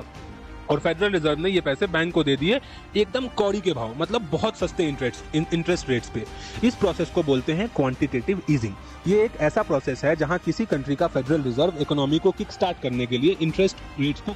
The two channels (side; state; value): both; identical; correlation 1.00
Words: और फेडरल रिजर्व ने ये पैसे बैंक को दे दिए एकदम कौड़ी के भाव, मतलब बहुत सस्ते इंटरेस्ट रेट्स पे। इस प्रोसेस को बोलते हैं क्वांटिटेटिव ईजिंग। ये एक ऐसा प्रोसेस है जहां किसी कंट्री का फेडरल रिजर्व इकोनॉमी को किक स्टार्ट करने के लिए इंटरेस्ट रेट्स को